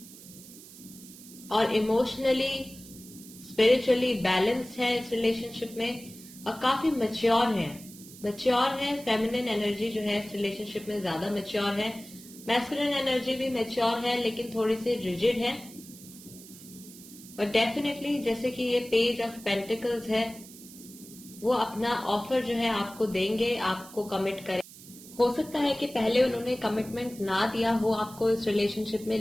और इमोशनली स्पिरिचुअली बैलेंस है इस रिलेशनशिप में और काफी मैच्योर है। फेमिनिन एनर्जी जो है इस रिलेशनशिप में ज्यादा मैच्योर है। मैस्कुलिन एनर्जी भी मैच्योर है लेकिन थोड़ी सी रिजिड है। और डेफिनेटली जैसे कि ये पेज ऑफ पेंटिकल्स है, वो अपना ऑफर जो है आपको देंगे, आपको कमिट करें। हो सकता है कि पहले उन्होंने कमिटमेंट ना दिया हो आपको इस रिलेशनशिप में,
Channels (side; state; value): right; noise; hiss, 18 dB below the sound